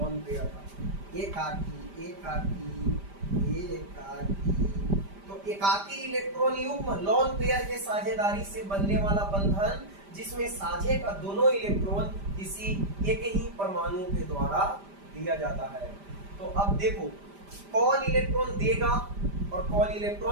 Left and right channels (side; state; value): left; late; 5.0 ms